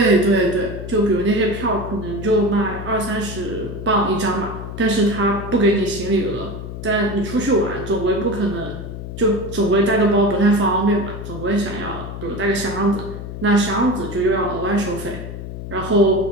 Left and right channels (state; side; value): noise; left; hum, 9 dB below the sound